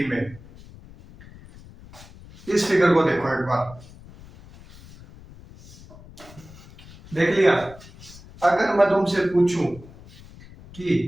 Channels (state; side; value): noise; left; rumble, 20 dB below the sound